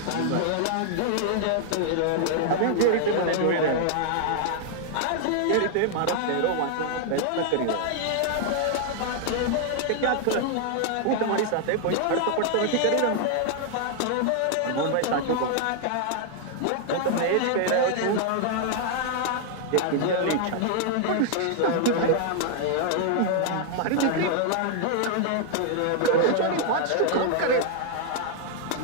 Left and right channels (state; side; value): different; both; correlation 0.00